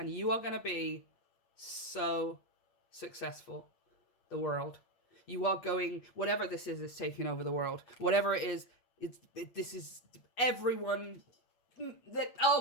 you are going to be so successful. The world. You are going, whatever this is taking over the world. Whatever it is, this is everyone that,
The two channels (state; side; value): late; right; 8.3 ms